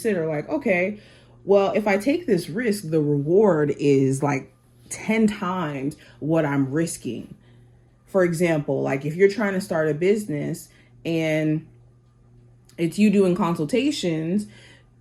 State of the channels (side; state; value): both; identical; correlation 1.00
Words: like, okay, well, if I take this risk, the reward is like 10 times what I'm risking. For example, like if you're trying to start a business and it's you doing consultations,